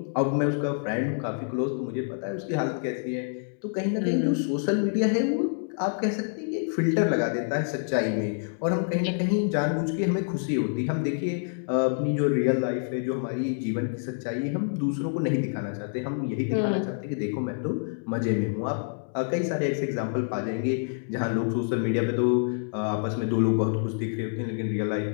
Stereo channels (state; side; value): silent; right; digital silence